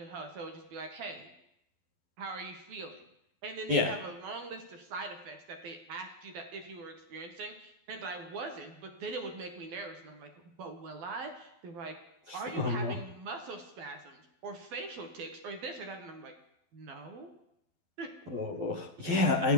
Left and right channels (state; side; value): late; left; 12 ms